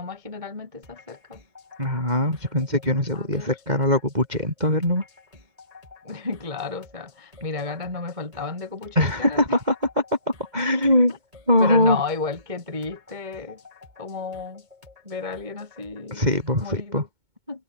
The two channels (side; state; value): left; late; 2.2 ms